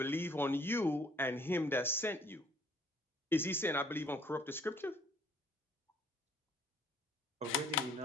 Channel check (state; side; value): normal; both; correlation 0.60